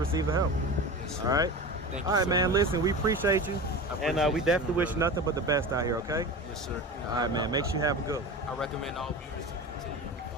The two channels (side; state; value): both; normal; correlation 0.30